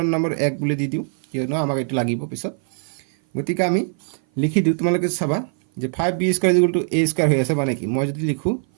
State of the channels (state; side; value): silent; left; 57 dB below the other